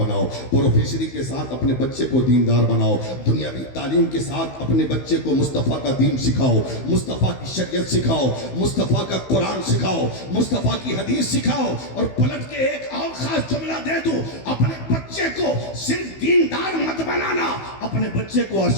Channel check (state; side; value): late; right; 15 ms